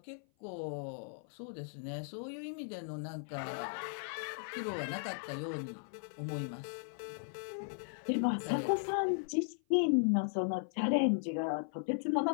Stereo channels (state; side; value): silent; right; 53 dB below the other